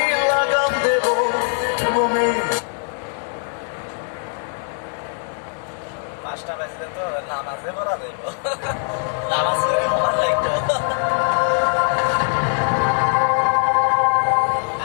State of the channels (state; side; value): silent; right; 61 dB below the other